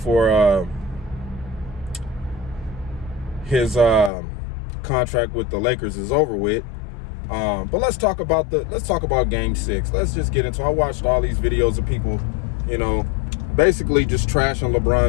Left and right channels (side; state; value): right; drops out; at 4.1 s